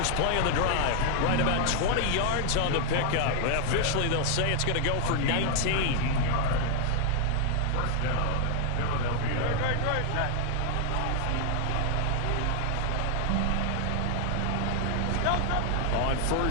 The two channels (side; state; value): both; different; correlation 0.00